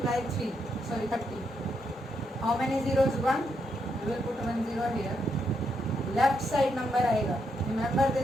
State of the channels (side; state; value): both; normal; correlation 0.79